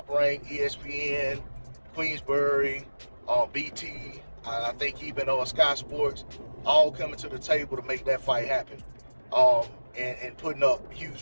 rank, ESPN, Queensbury, BT, I think even Sky Sports, all coming to the table to make that fight happen. And putting up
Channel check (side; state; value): both; inverted; correlation -1.00